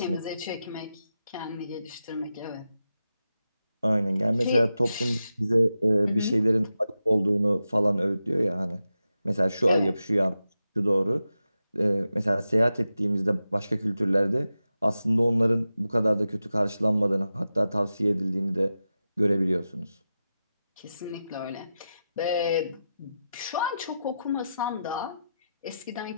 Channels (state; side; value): inverted; both; correlation -0.90